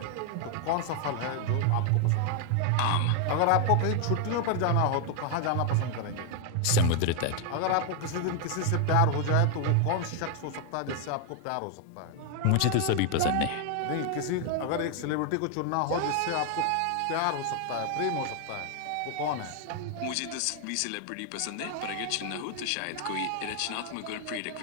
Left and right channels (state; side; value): different; both; correlation 0.00